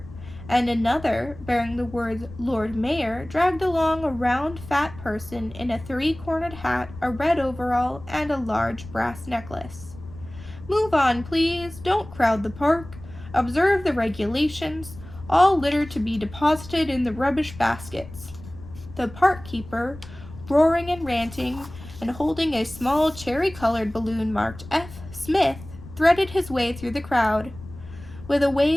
and another, bearing the words Lord Mayor, dragged along a round, fat person in a three-cornered hat, a red overall, and a large brass necklace. Move on, please. Don't crowd the park. Observe the regulations. All litter to be deposited in the rubbish baskets. The park keeper, roaring and ranting, and holding a small cherry-colored balloon marked F. Smith, threaded his way through the crowd. With a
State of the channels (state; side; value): noise; left; rumble, 16 dB below the sound